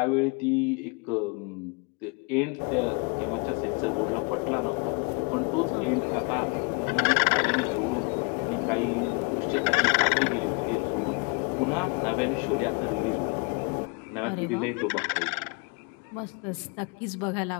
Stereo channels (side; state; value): right; quieter; 33.2 dB